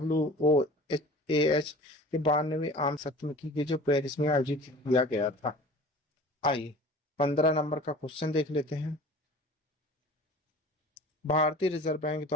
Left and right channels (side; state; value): both; normal; correlation 0.42